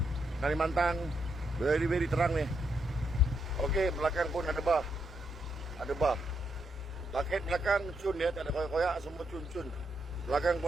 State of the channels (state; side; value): normal; both; correlation 0.80